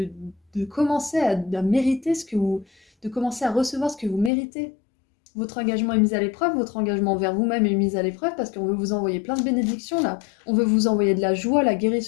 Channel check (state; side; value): drops out; right; at 4.3 s